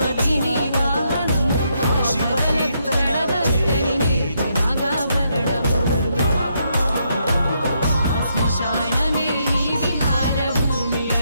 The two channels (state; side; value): inverted; both; correlation -0.77